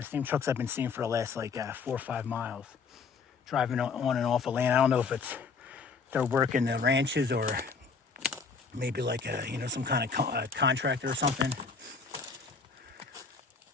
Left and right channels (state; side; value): quieter; right; 5.1 dB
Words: same trucks I've been seeing for the last like 4 or 5 miles, driving on and off of land. I don't know if they're working the ranches or maybe like some kind of contractor or something.